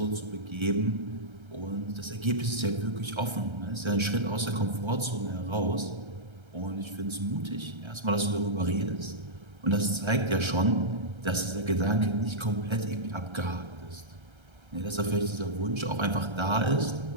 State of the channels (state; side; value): late; left; 1.3 ms